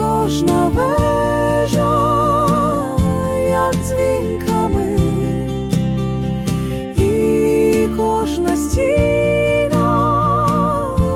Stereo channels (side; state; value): both; identical; correlation 1.00